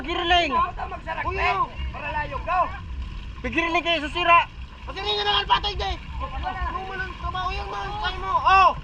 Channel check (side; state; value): both; identical; correlation 1.00